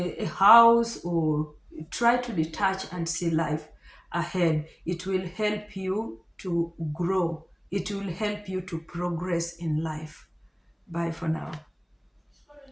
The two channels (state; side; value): identical; both; correlation 1.00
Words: house, or try to detach and see life ahead. It will help you to grow, it will help you to progress in life. Bye for now.